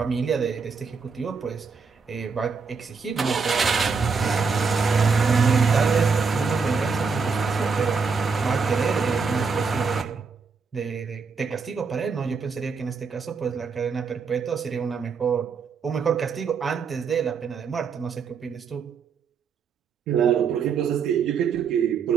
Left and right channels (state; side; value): quieter; left; 5.3 dB